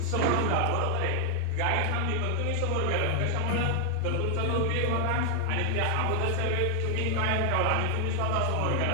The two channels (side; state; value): both; different; correlation 0.00